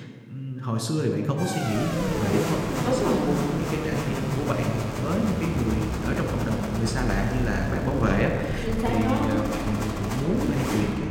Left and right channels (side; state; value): both; identical; correlation 1.00